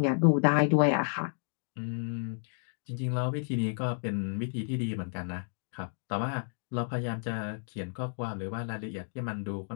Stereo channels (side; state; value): right; silent; digital silence